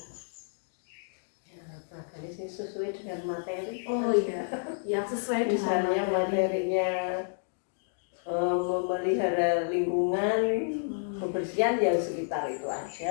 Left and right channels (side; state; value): right; silent; digital silence